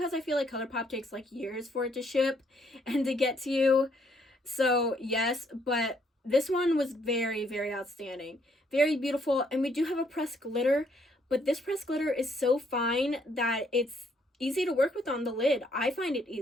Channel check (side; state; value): both; normal; correlation 0.69